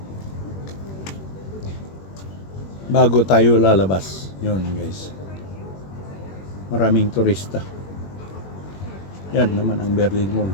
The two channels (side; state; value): right; late; 21 ms